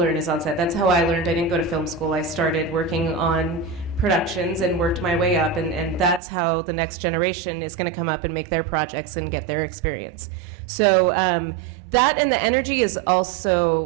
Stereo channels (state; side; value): drops out; left; at 6.2 s